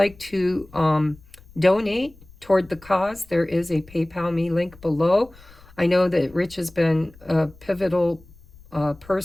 to donate toward the cause, there is a PayPal me link below. I know that Rich has been a pivotal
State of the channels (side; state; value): left; noise; rumble, 24 dB below the sound